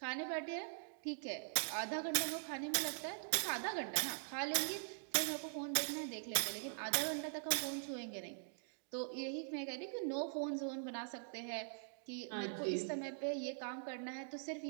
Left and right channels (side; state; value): left; silent; digital silence